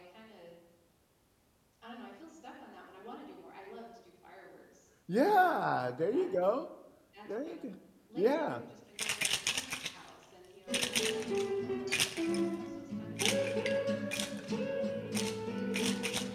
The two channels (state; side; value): identical; both; correlation 1.00